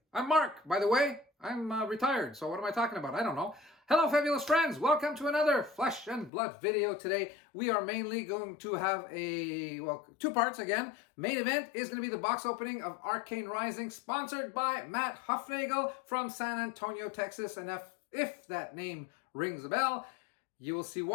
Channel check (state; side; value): drops out; right; at 6.3 s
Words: I'm Mark, by the way. I'm retired, so what am I talking about? I don't know. Hello, fabulous friends. Welcome to another Flesh and Blood video today. We are mainly going to have two parts again. Main event is going to be the box opening of Arcane Rising, sponsored by Matt Huffnagel from San Antonio, Texas. And if that name rings a bell, you will see